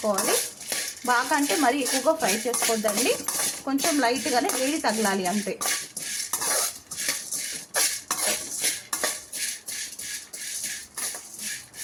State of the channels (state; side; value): identical; both; correlation 1.00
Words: బాగా అంటే మరీ ఎక్కువగా ఫ్రై చేసుకోవద్దండి, కొంచెం లైట్గానే వేడి తగలాలి అంతే.